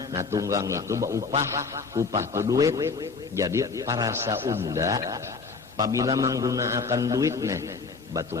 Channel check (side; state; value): right; quieter; 4.6 dB